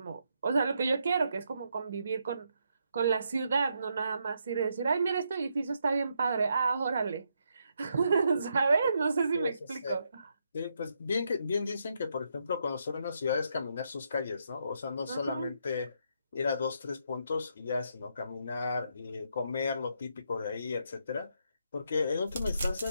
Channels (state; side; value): inverted; both; correlation -0.78